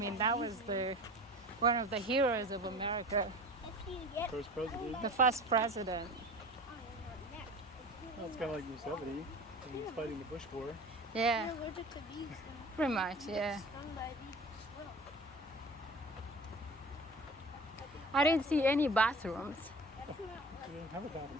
that was the one of the heroes of America, If you get First president. the first president. Well, it's kind of like Yosemite when he's fighting the Bush War. Yeah, You're allergic to bees, then pretty much. Yeah. stung by a bee, squirrel. I didn't see any bathrooms. That's not They didn't have a bathroom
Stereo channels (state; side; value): normal; both; correlation 0.38